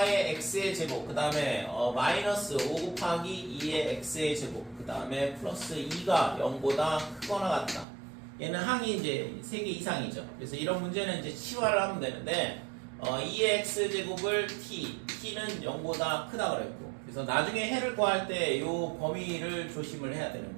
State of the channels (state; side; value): drops out; left; at 7.9 s